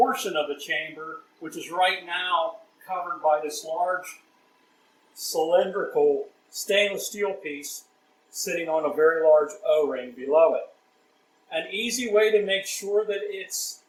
of the chamber, which is right now covered by this large cylindrical stainless steel piece sitting on a very large O-ring below it. An easy way to make sure that it's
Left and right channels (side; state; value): both; identical; correlation 1.00